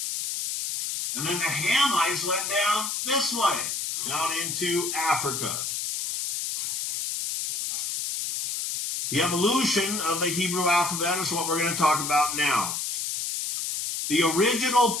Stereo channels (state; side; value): noise; left; hiss, 3 dB below the sound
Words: And then the Hamites went down this way, down into Africa. The evolution of the Hebrew alphabet is what we're going to talk about now. The original